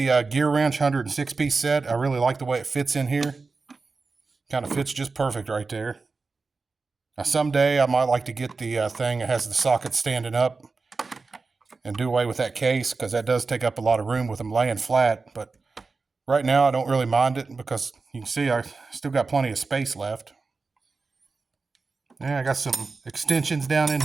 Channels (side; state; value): left; quieter; 4.2 dB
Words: Gear Wrench 106-piece set. I really like the way it fits in here. Kind of fits just perfect right there. Now someday I might like to get the thing that has the socket standing up and do away with that case because that does take up a lot of room with them laying flat. But right now I don't really mind it because you can see I still got plenty of space left. Yeah, I got some extensions down in